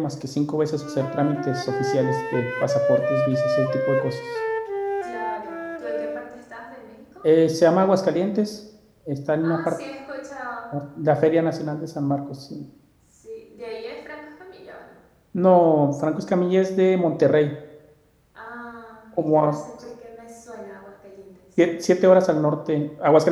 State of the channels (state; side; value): identical; both; correlation 1.00